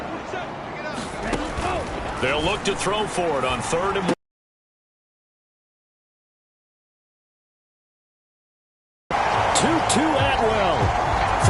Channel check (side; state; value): both; identical; correlation 1.00